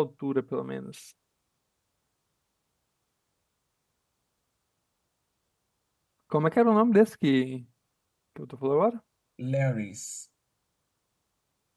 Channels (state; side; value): identical; both; correlation 1.00